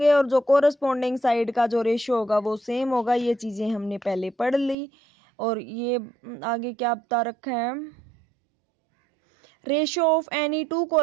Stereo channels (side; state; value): left; drops out; at 4.8 s